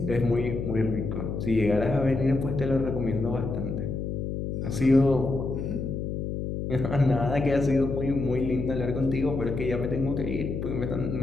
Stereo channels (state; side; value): noise; left; hum, 3 dB below the sound